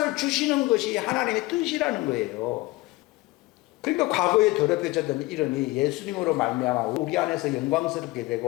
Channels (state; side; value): quieter; right; 21.0 dB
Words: 주시는 것이 하나님의 뜻이라는 거예요. 그러니까 과거에 더럽혀졌던 이름이 예수님으로 말미암아 우리 안에서 영광스럽게